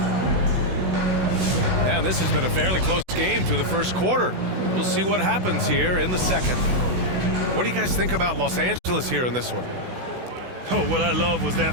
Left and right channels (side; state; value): left; late; 16 ms